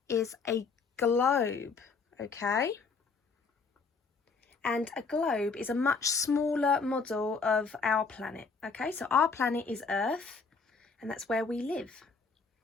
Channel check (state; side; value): quieter; right; 4.7 dB